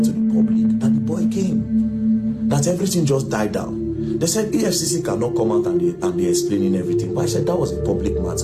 to the public that the boy came, that everything just died down. They said EFCC cannot come out and be explaining everything. But I said that was a public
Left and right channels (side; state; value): both; identical; correlation 1.00